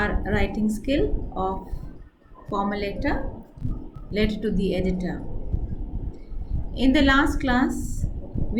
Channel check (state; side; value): identical; both; correlation 1.00